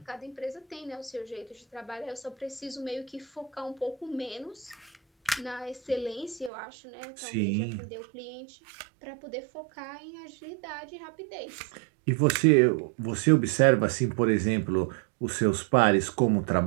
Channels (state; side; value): drops out; left; at 6.5 s